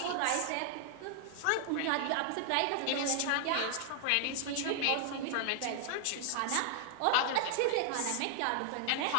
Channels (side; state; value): both; different; correlation 0.00